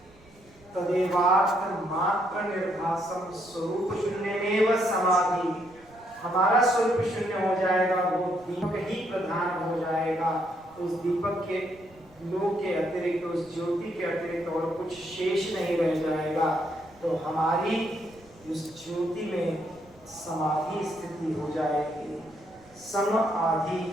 तदेवार्थ मात्र निर्भासम स्वरूप शून्यमेव समाधि। हमारा स्वरूप शून्य हो जाएगा, वो दीपक ही प्रधान हो जाएगा। उस दीपक के लोक के अतिरिक्त, उस ज्योति के अतिरिक्त और कुछ शेष नहीं रह जाएगा। तो हमारी उस ज्योति में समाधि स्थिति हो जाएगी, सम आदि,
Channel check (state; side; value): noise; right; rumble, 27 dB below the sound